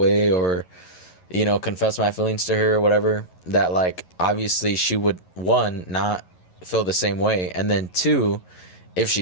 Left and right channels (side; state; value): right; late; 11 ms